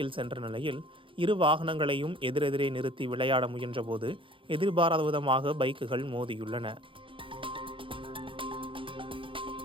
சென்ற நிலையில் இரு வாகனங்களையும் எதிரெதிரே நிறுத்தி விளையாட முயன்றபோது எதிர்பாராத விதமாக பைக்குகள் மோதியுள்ளன.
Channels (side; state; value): left; late; 0.25 ms